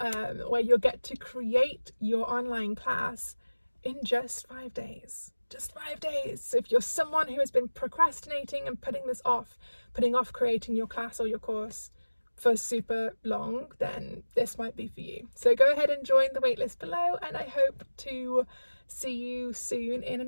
where you'll get to create your online class in just 5 days. Just 5 days. So if you're someone who has been procrastinating and putting off creating your class or your course for super long, then this might be for you. So go ahead and join the waitlist below, and I hope to see you soon in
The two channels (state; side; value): inverted; both; correlation -1.00